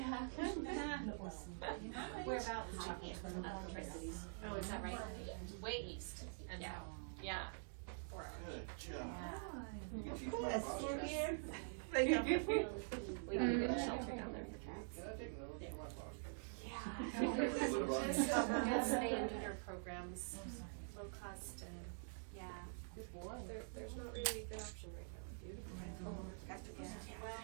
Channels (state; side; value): silent; left; digital silence